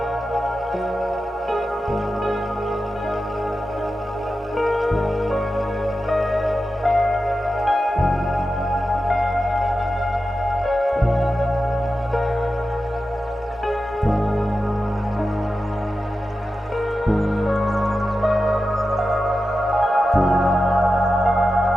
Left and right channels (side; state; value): both; normal; correlation 0.91